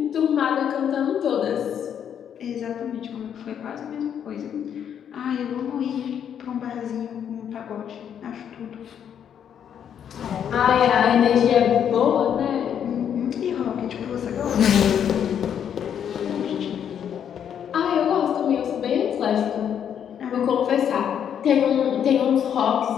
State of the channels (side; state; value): right; quieter; 8.8 dB